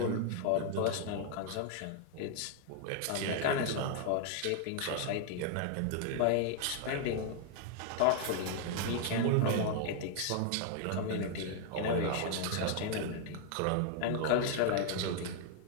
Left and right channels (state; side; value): different; both; correlation 0.00